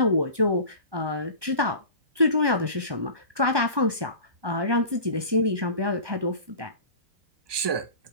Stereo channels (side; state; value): left; late; 1.2 ms